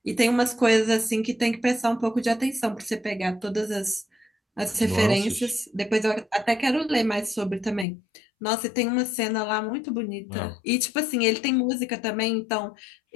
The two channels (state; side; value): drops out; right; at 7.9 s